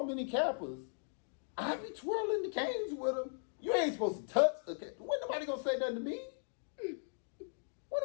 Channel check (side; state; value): right; silent; digital silence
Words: many Kappas, I be twirling the canes with them. You ain't supposed to touch a cane. When nobody gonna say nothing to me? When